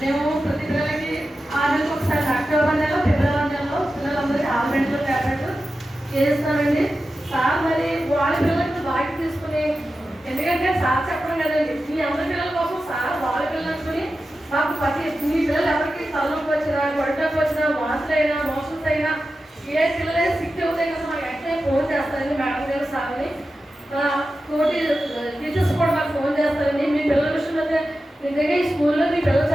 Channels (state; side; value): normal; both; correlation 0.92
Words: ప్రతి పిల్లలకి 6 నెలలకు ఒకసారి అక్టోబర్ నెలలో ఫిబ్రవరి నెలలో పిల్లలందరికీ ఆల్మెంట్లో ట్యాబ్లెట్ చేస్తామండి. సార్ మరి వాళ్ళ పిల్లలకి బాగా తీసుకుని, ఎందుకంటే సార్ చెప్పడం కదండి, మీ అందరి పిల్లల కోసం సార్ వాళ్ళ పిల్లలు అనుకుని మాకు మీ పిల్లలు ఎవరికి తలనొప్పి వచ్చినా, గొడ్డకు వచ్చినా, వాసులైనా మోషన్స్ అయినా ఏ పిల్లలైనా సిక్ అవుతాయి కదా మాకు వెంటనే ఫోన్ చేస్తారండి మేడం గారు సార్ని. తోటి టీచర్స్ కూడా మాకు ఫోన్ చేస్తారండి. మీ పిల్లల విషయంలో అయితే నిజంగా ఈ స్కూల్లో మీ పిల్లలు